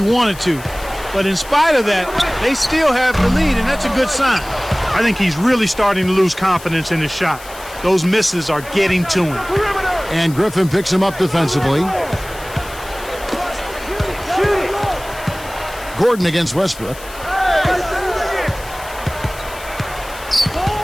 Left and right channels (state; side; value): noise; left; hiss, 17 dB below the sound